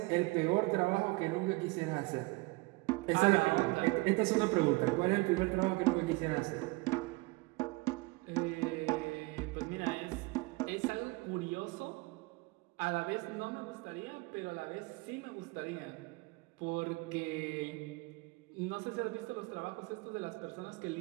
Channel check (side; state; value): left; quieter; 24.5 dB